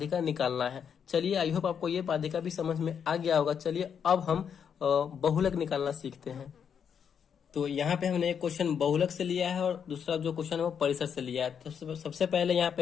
निकालना है। चलिए आई होप आपको ये माध्यिका भी समझ में आ गया होगा। चलिए अब हम बहुलक निकालना सीखते हैं। तो यहाँ पे हमने एक क्वेश्चन बहुलक से लिया है और दूसरा जो क्वेश्चन है वो परिसर से लिया है। तो सबसे पहले यहाँ पे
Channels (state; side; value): quieter; right; 7.5 dB